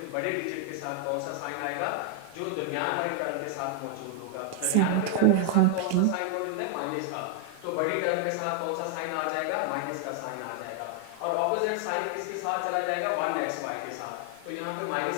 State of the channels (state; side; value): different; both; correlation 0.00